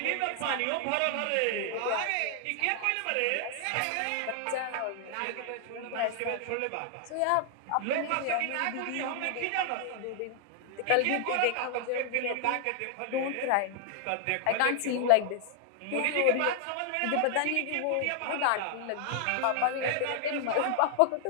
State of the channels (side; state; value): both; different; correlation 0.00